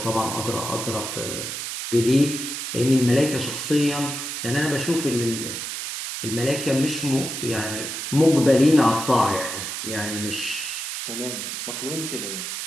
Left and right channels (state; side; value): noise; right; hiss, 5 dB below the sound